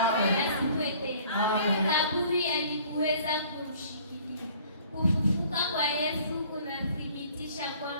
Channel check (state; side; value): inverted; both; correlation -0.54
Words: tena. Kaburi halikuweza kumshikilia. Kufufuka kwa Yesu kunathibitisha